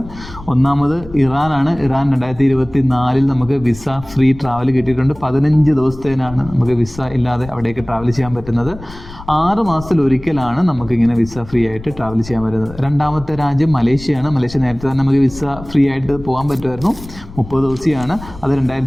ഒന്നാമത് ഇറാനാണ്. ഇറാൻ 2024 നമുക്ക് വിസ ഫ്രീ ട്രാവൽ കിട്ടിയിട്ടുണ്ട്. 15 ദിവസത്തേനാണ് നമുക്ക് വിസ ഇല്ലാതെ അവിടേക്ക് ട്രാവൽ ചെയ്യാൻ പറ്റുന്നത്. 6 മാസത്തിൽ ഒരിക്കലാണ് നമുക്കിങ്ങനെ വിസ ഫ്രീ ആയിട്ട് ട്രാവൽ ചെയ്യാൻ പറ്റുന്നത്. രണ്ടാമത്തെ രാജ്യം മലേഷ്യയാണ്. മലേഷ്യ നേരത്തെ തന്നെ നമുക്ക് വിസ ഫ്രീ ആയിട്ട് പോകാൻ പറ്റുമായിരുന്നു. 30 ദിവസമാണ്. അത്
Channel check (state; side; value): noise; left; rumble, 16 dB below the sound